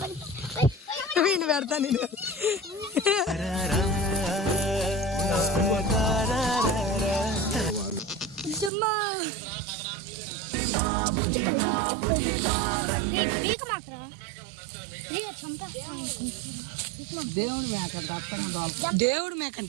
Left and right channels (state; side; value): drops out; left; at 8.7 s